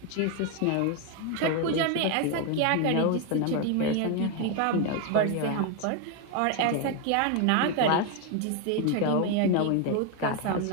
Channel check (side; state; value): both; different; correlation 0.01